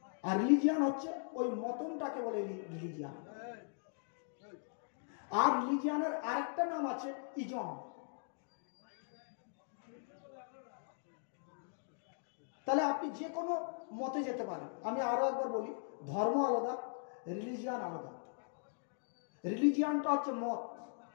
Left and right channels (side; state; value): right; silent; digital silence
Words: আর রিলিজিয়ান হচ্ছে ওই মতনটাকে বলে রিলিজিয়ান। আর রিলিজিয়ানের আরেকটা নাম আছে ইজম। তাহলে আপনি যে কোনো মতে যেতে পারেন। আমি আরো একবার বলি, ধর্ম আলাদা, রিলিজিয়ান আলাদা। রিলিজিয়ানটা হচ্ছে মত,